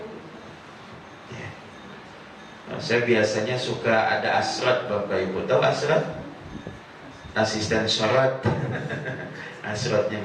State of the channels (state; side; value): identical; both; correlation 1.00